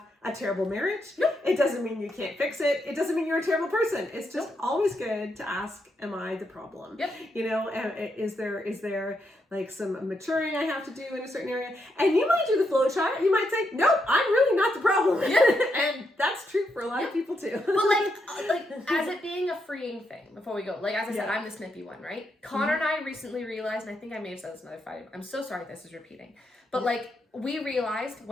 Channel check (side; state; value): both; normal; correlation 0.80